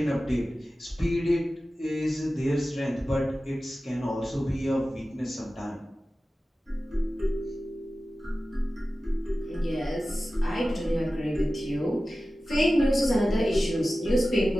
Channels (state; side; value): normal; both; correlation 0.95